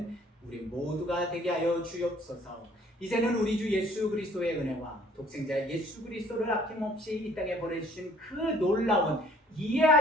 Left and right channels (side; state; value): both; normal; correlation 0.56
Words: 우리 모두가 되게 하여 주옵소서. 이제는 우리 주 예수 그리스도의 은혜와 독생자 예수 그리스도를 아낌없이 이 땅에 보내주신 그 놀라운